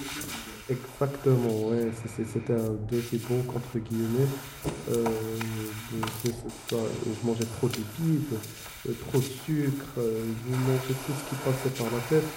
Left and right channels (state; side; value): identical; both; correlation 1.00